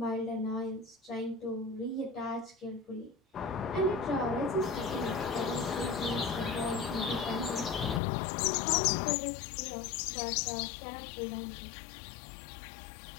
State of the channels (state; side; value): drops out; right; at 8.0 s